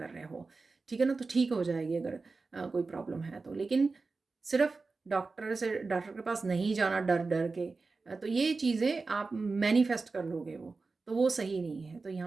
रहे हो, ठीक है ना। तो ठीक हो जाएगी अगर कोई प्रॉब्लम है तो। लेकिन सिर्फ डॉक्टर के पास नहीं जाना डर डर के, तो ये चीज़ें आप मैनिफेस्ट कर लोगे तो वो सही नहीं है। तो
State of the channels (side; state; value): left; quieter; 4.0 dB